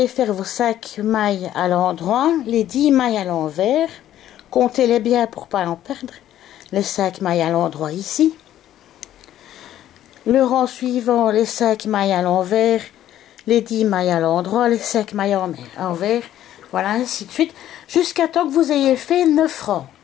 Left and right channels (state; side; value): quieter; right; 12.2 dB